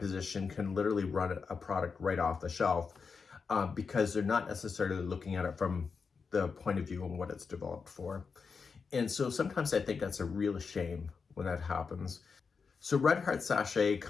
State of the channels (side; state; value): right; quieter; 5.3 dB